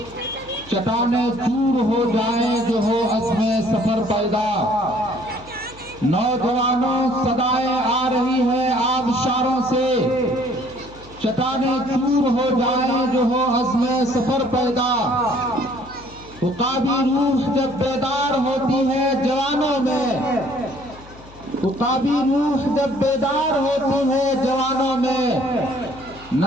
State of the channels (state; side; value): noise; left; hum, 21 dB below the sound